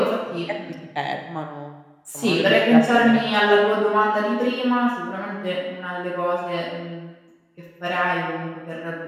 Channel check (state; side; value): identical; both; correlation 1.00